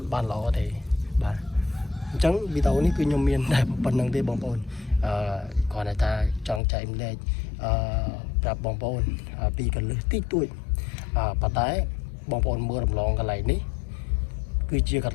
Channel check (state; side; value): drops out; right; at 6.6 s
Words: បានល្អទេបាទអញ្ចឹងវីដេអូនេះគឺខ្ញុំមានតែប៉ុណ្្នឹងទេបងប្អូនគាត់ថាចង់ចែកម្លែកប្រាប់បងប្អូនពីកលឹះតិចតួចប៉ុន្តែបងប្អូនមើលរំលងកន្លែងនេះគឺជាកន